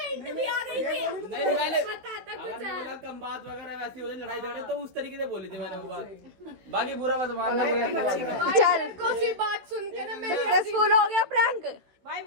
मैंने, कम बात वगैरह वैसी हो जाए, लड़ाई झगड़े तो उस तरीके से बोली थी मैंने वो बात, बाकी बुरा मत मानना। चल कोई बात सुन के ना मेरे सक्सेसफुल हो गया प्रैंक। भाई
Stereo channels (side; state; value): left; late; 16 ms